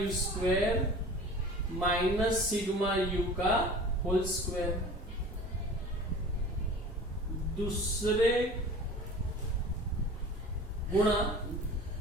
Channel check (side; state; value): both; normal; correlation 0.41